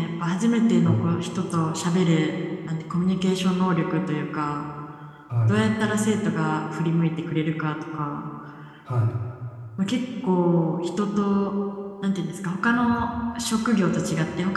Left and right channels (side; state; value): both; identical; correlation 1.00